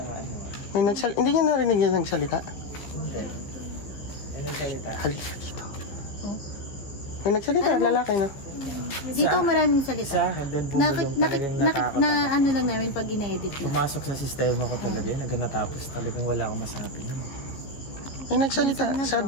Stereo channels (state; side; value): late; right; 14 ms